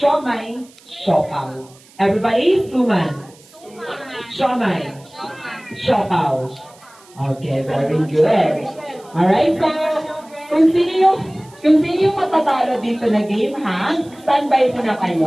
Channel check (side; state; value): right; noise; hiss, 26 dB below the sound